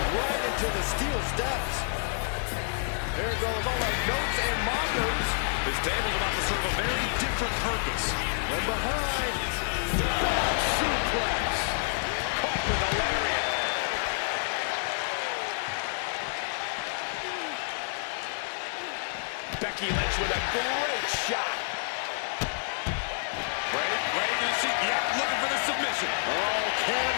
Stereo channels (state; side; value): silent; right; 57 dB below the other